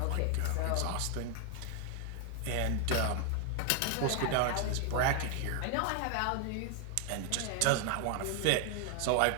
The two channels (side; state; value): both; different; correlation 0.00